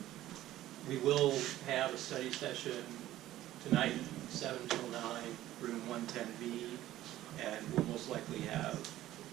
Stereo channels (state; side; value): quieter; left; 14.3 dB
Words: we will have a study session tonight, 7 till 9, room 110B, and we'll most likely have,